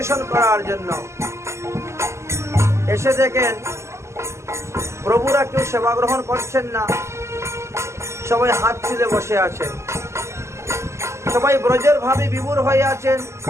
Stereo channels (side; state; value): left; late; 0.13 ms